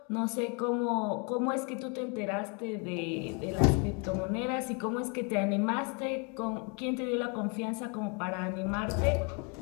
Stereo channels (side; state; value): right; quieter; 34.4 dB